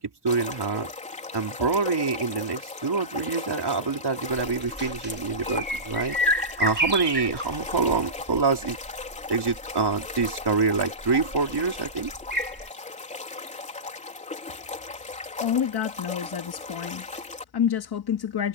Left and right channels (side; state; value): both; normal; correlation -0.18